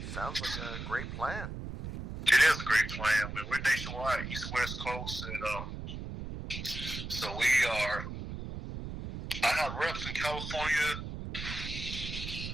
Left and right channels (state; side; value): noise; right; rumble, 7 dB below the sound